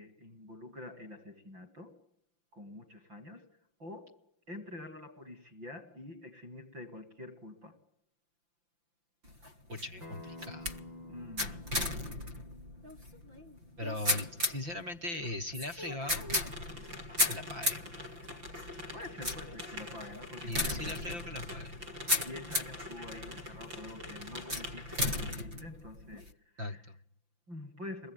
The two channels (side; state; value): left; late; 5.8 ms